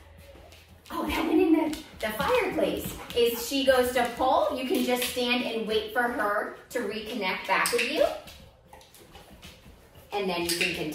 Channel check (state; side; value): identical; both; correlation 1.00